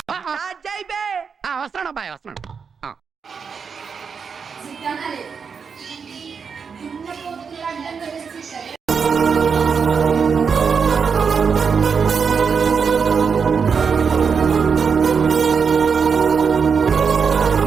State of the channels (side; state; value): left; quieter; 6.0 dB